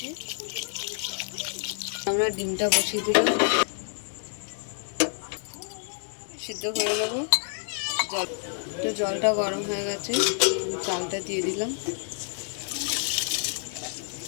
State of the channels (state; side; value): silent; right; digital silence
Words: আমরা ডিমটা বসিয়ে দিলাম, সিদ্ধ করে নেবো। জলটা গরম হয়ে গেছে, চালটা দিয়ে দিলাম।